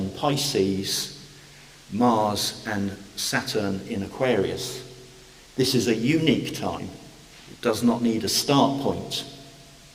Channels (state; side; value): identical; both; correlation 1.00